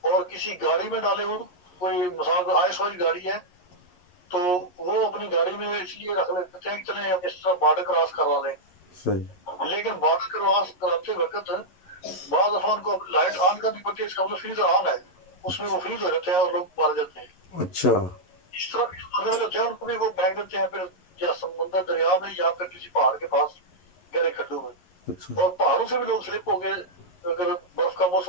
और किसी गाड़ी में डाले हो, कोई मिसाल आइस वाली गाड़ी है तो वो अपनी गाड़ी में इसलिए रख लेते हैं कि चले हम इस तरह बॉर्डर क्रॉस करवा लें, सही लेकिन बॉर्डर क्रॉस कराते वक्त बाद दफा उनको लाइट ऑन करनी पड़ती है, इसका मतलब फ्रीजर ऑन है, उसमें वो फ्रीज हो जाते हैं और लोग मारे जाते हैं। अच्छा इस तरह के मरने वाले होते हैं उनको भी वो फेंक देते हैं फिर या समुद्र दरिया में या फिर किसी पहाड़ के पास गहरे खड्डों में, अच्छा और पहाड़ों से भी लोग स्लिप हो गए, अगर बर्फ का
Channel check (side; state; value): right; late; 11 ms